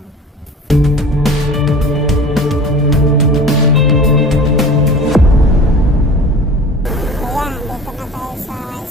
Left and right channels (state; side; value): normal; both; correlation 0.40